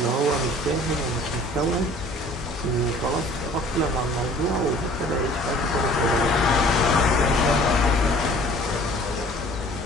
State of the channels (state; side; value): normal; both; correlation 0.50